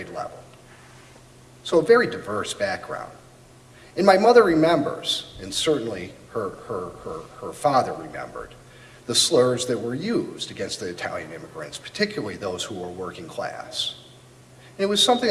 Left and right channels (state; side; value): identical; both; correlation 1.00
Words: level. So a very diverse background. And my mother remembers, and certainly her father remembered, the slurs that were used against the Italian immigrants, particularly those who were working class. And it was something